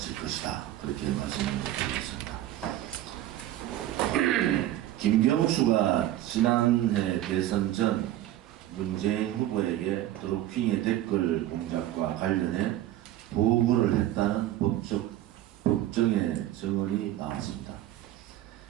것이다. 그렇게 말씀을 드리겠습니다. 김경수가 지난해 대선 전 문재인 후보에게 드루킹의 댓글 공작과 관련해 보고를 했다는 법정의 증언이 나왔습니다.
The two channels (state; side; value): quieter; left; 13.6 dB